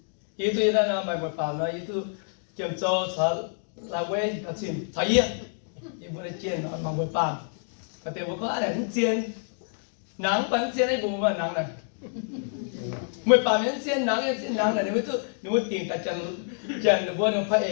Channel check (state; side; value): silent; right; digital silence